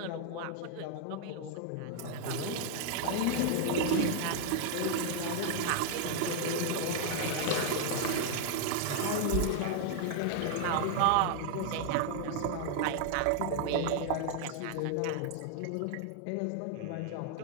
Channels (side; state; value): both; different; correlation 0.00